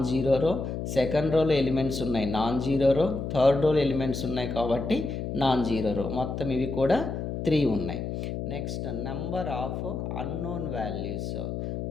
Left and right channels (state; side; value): noise; left; hum, 4 dB below the sound